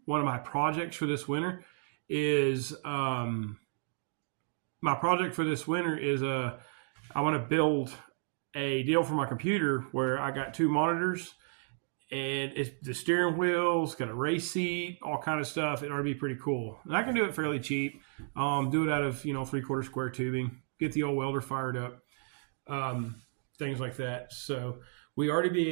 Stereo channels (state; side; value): silent; left; 56 dB below the other